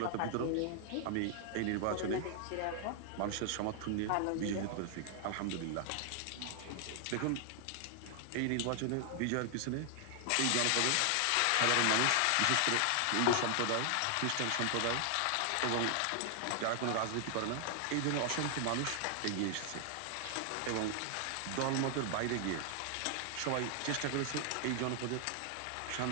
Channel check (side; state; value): both; different; correlation 0.00